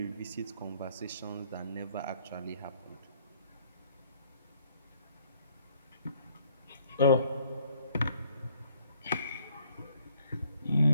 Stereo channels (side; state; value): both; inverted; correlation -0.64